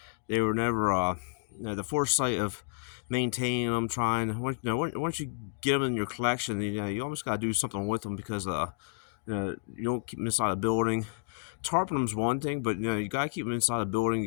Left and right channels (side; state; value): right; silent; digital silence